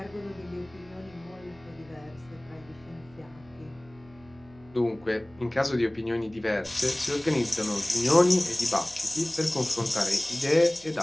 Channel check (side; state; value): right; noise; hum, 25 dB below the sound